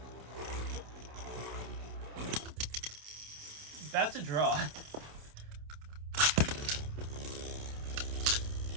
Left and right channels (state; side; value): late; left; 27 ms